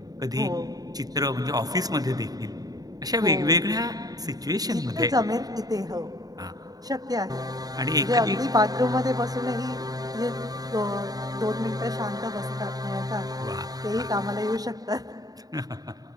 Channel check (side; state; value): left; late; 0.18 ms